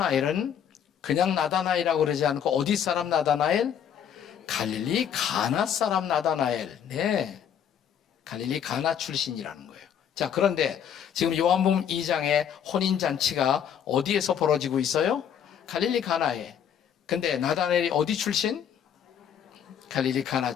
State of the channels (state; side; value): quieter; right; 8.7 dB